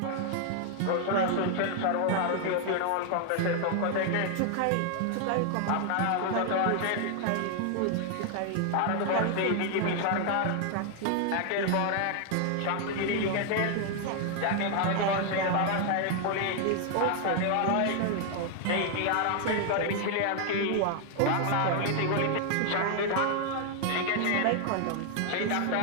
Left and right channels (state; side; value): different; both; correlation 0.00